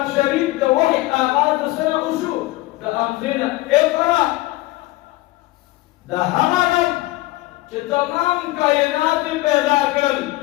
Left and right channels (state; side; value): quieter; right; 18.9 dB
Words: شريف ده وحي آغاز سنة وشو ده أمزينا اقرأ ده همدن چه تمام کائنات پیدا کرل